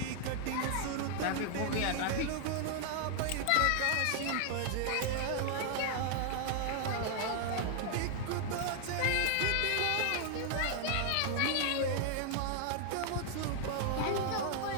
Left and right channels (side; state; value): both; different; correlation 0.00